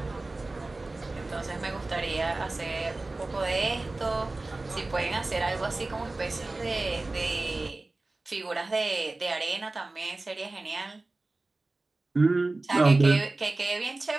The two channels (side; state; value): left; quieter; 3.1 dB